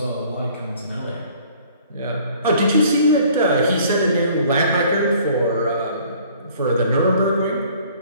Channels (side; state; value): both; inverted; correlation -0.55